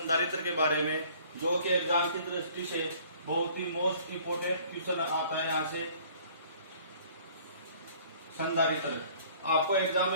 के बारे में, जो कि एग्जाम की दृष्टि से बहुत ही मोस्ट इंपोर्टेंट क्वेश्चन आता है। यहाँ से संधारित्र आपको एग्जाम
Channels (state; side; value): inverted; both; correlation -0.54